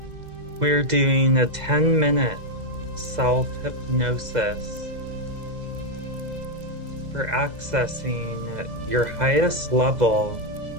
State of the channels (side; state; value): left; late; 2.0 ms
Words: We're doing a 10-minute self-hypnosis for accessing your highest level